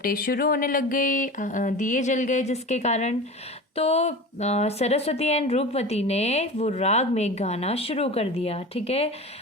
शुरू होने लग गई, दिए जल गए जिसके कारण, तो सरस्वती एंड रूपवती ने वो राग में गाना शुरू कर दिया। ठीक है,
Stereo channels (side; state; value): both; normal; correlation 0.32